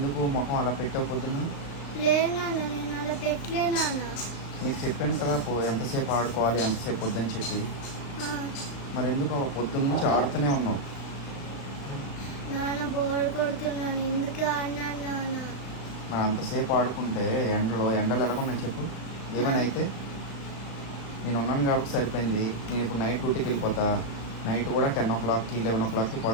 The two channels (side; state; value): right; late; 35 ms